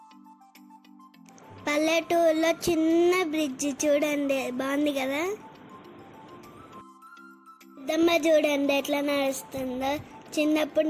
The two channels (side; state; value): both; identical; correlation 1.00